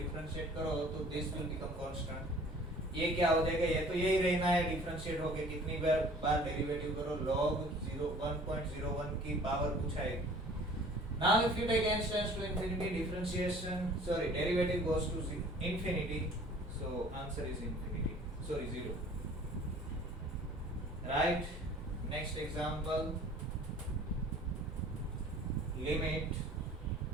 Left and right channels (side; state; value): both; normal; correlation 0.50